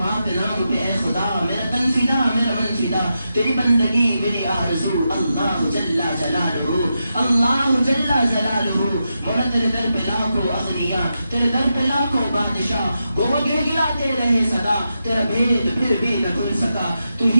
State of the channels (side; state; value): both; inverted; correlation -0.87